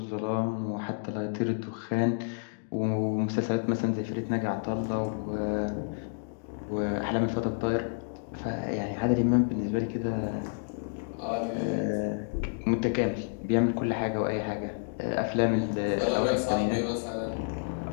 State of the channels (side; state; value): right; silent; digital silence